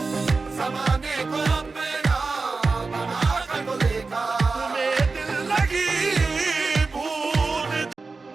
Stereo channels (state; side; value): quieter; left; 4.1 dB